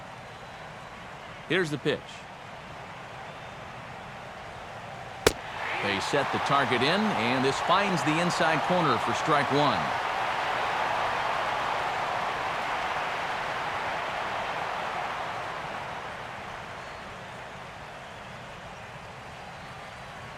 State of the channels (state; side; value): identical; both; correlation 1.00